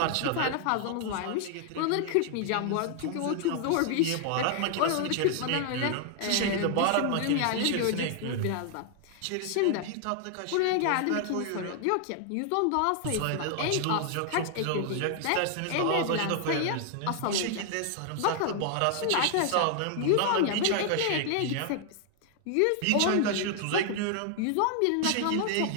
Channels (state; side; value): different; both; correlation 0.00